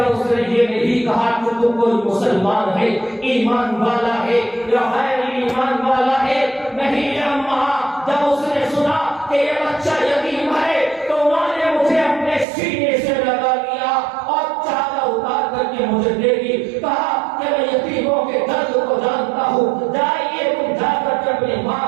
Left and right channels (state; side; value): drops out; left; at 12.5 s